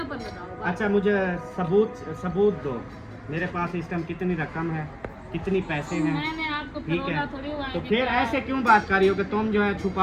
ऊपर लगाओ। अच्छा, मुझे सबूत दो, मेरे पास इस टाइम कितनी रकम है, कितनी पैसे हैं, मैंने आपको ठीक है। फरोला थोड़ी हुआ है तो कि फिर क्या ऐसे क्यों बात कर रही हो कि तुम जो है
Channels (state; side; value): identical; both; correlation 1.00